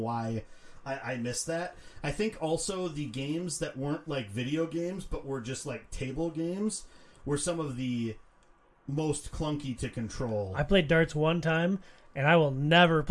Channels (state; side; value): identical; both; correlation 1.00